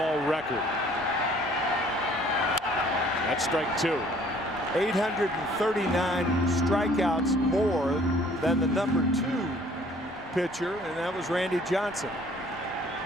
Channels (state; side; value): normal; both; correlation 0.57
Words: record. That's strike 2. 839 strikeouts more than the number 2 pitcher, and that was Randy Johnson.